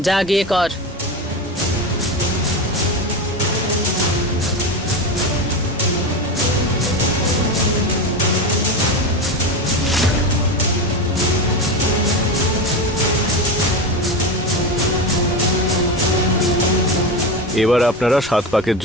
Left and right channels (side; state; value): both; normal; correlation 0.20